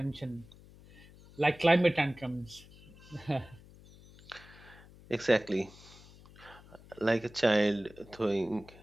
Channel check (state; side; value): noise; left; hum, 22 dB below the sound